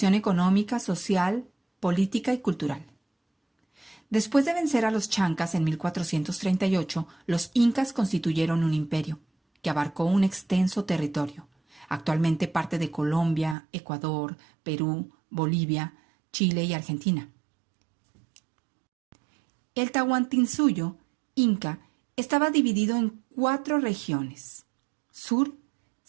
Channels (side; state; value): left; drops out; at 13.6 s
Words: económica, social, política y cultural. Después de vencer a los chancas en 1438, los incas constituyeron un imperio que abarcó un extenso territorio, actualmente parte de Colombia, Ecuador, Perú, Bolivia, Chile y Argentina. El Tahuantinsuyo, inca, estaba dividido en 4 regiones: sur,